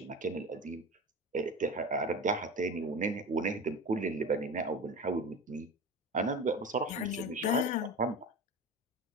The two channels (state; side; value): normal; both; correlation 0.30